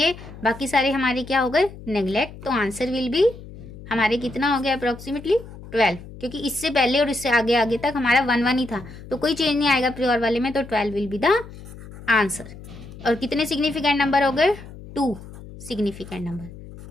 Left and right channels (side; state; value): left; noise; hum, 16 dB below the sound